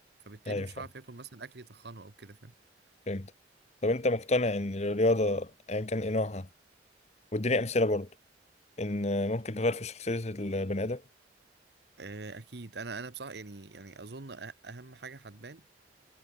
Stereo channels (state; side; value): normal; both; correlation 0.37